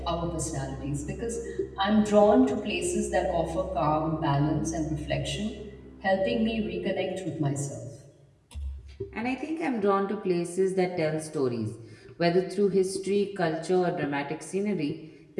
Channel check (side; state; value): both; identical; correlation 1.00